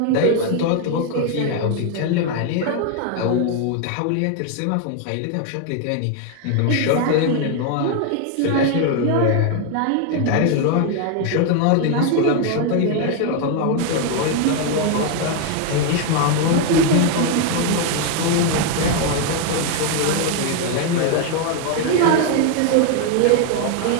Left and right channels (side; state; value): both; different; correlation 0.01